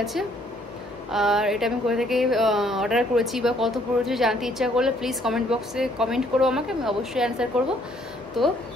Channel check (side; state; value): both; normal; correlation 0.65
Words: আছে, আর এটা আমি কোথা থেকে অর্ডার করেছি বা কত পড়েছে জানতে ইচ্ছা করলে প্লিজ কমেন্ট বক্সে কমেন্ট করো আমাকে, আমি অবশ্যই অ্যান্সার করবো। তো